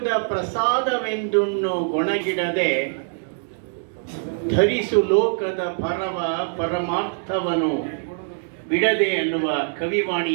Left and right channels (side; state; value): left; silent; 63 dB below the other